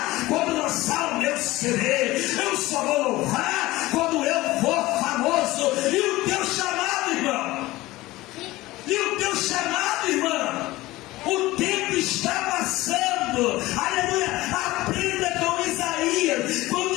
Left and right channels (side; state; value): right; quieter; 18.6 dB